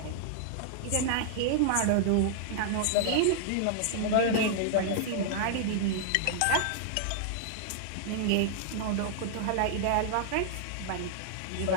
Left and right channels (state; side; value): different; both; correlation -0.01